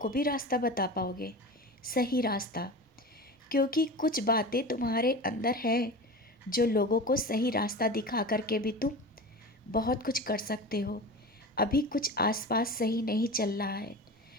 भी रास्ता बता पाओगे, सही रास्ता। क्योंकि कुछ बातें तुम्हारे अंदर हैं जो लोगों को सही रास्ता दिखा करके भी तुम बहुत कुछ कर सकते हो। अभी कुछ आसपास सही नहीं चल रहा है,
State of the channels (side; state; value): both; normal; correlation 0.31